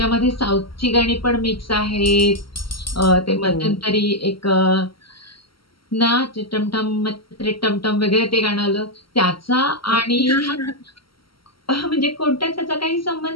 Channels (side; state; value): right; late; 0.74 ms